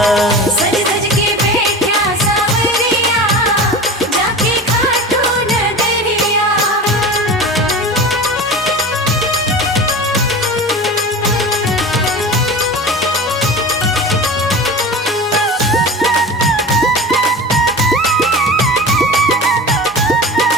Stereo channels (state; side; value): normal; both; correlation 0.32